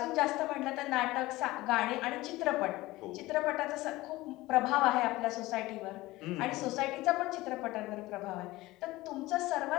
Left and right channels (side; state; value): right; quieter; 18.9 dB